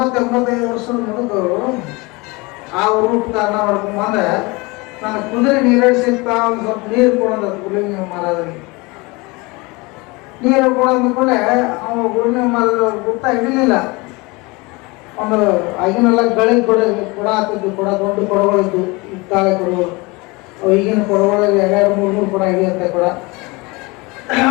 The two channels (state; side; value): quieter; right; 25.3 dB